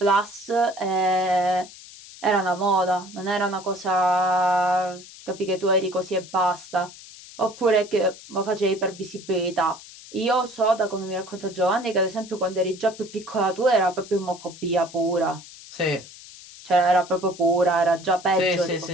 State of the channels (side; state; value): left; noise; hiss, 18 dB below the sound